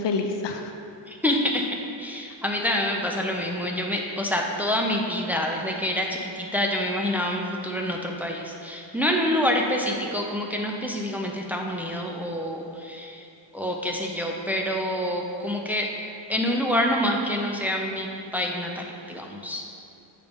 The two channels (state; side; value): normal; both; correlation 0.32